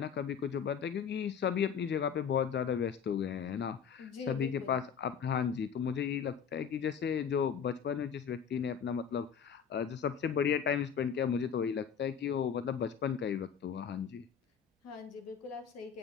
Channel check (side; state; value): right; quieter; 7.4 dB